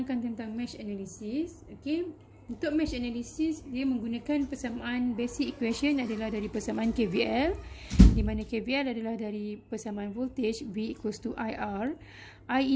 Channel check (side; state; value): both; identical; correlation 1.00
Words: tentang mesh analysis. Okey, untuk mesh analysis dia menggunakan persamaan basic equation adalah dari persamaan KVL, di mana KVL adalah dari persamaan voltage V equals to IR. I